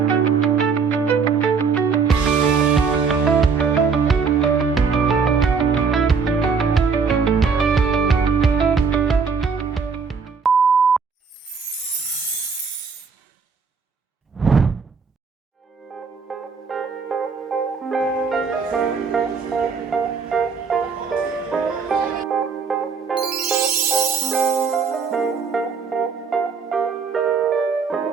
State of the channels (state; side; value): quieter; left; 5.5 dB